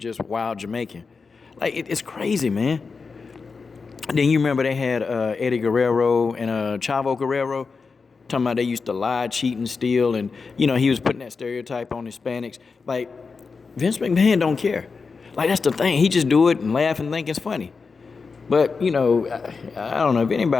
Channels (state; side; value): quieter; right; 4.8 dB